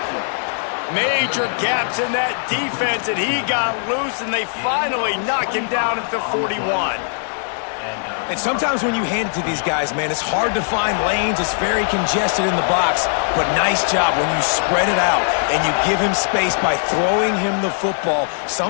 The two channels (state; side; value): silent; right; digital silence